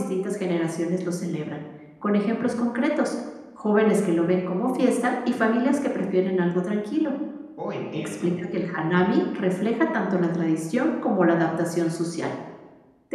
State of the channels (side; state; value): both; identical; correlation 1.00